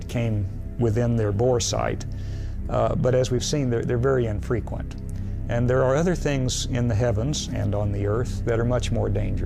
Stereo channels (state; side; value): identical; both; correlation 1.00